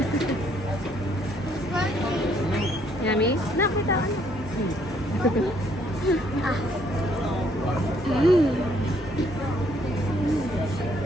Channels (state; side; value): normal; both; correlation 0.67